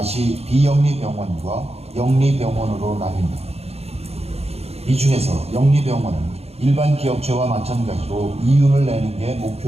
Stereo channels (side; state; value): left; late; 0.30 ms